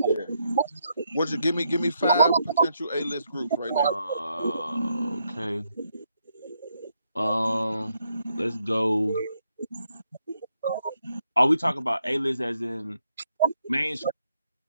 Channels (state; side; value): inverted; both; correlation -0.78